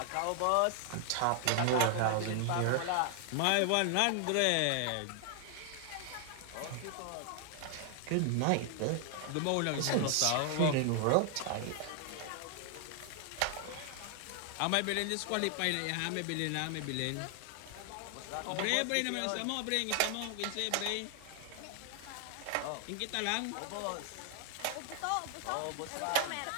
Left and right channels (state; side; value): different; both; correlation 0.00